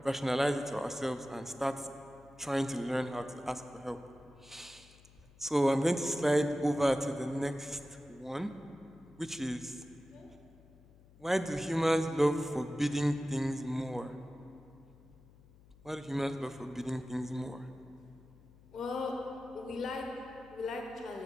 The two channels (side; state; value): left; noise; hum, 24 dB below the sound